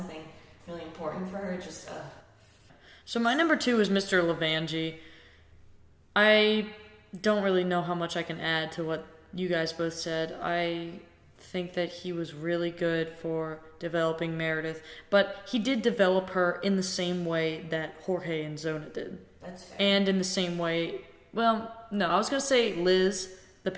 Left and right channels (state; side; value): identical; both; correlation 1.00